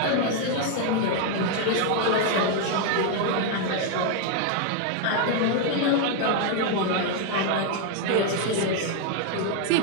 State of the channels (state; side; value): different; both; correlation 0.01